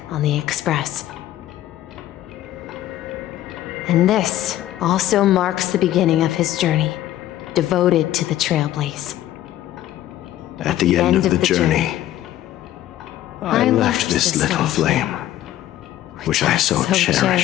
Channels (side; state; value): right; quieter; 13.4 dB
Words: on the Express. And this also marks the beginning of his journey, devoted to the Trailblaze. At the end of the journey, I left this little flame, which I so